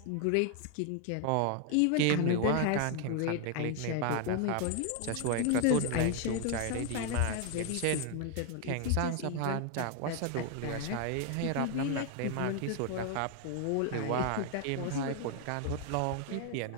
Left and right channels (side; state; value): both; different; correlation 0.00